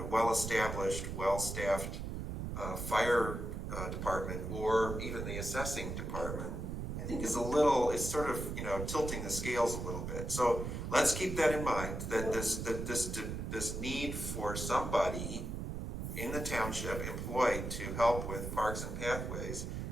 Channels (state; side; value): noise; right; rumble, 4 dB below the sound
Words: well-established, well-staffed fire department or even the assessing department, I think is it's sort of, tilting the scales a little bit. So let's keep that in mind, that this need for somebody in the township employed to help with Parks and Pathways